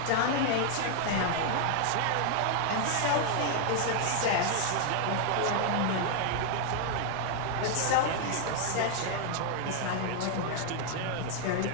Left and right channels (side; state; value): both; different; correlation 0.00